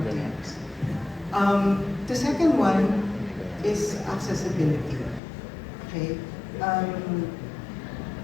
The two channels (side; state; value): right; drops out; at 5.2 s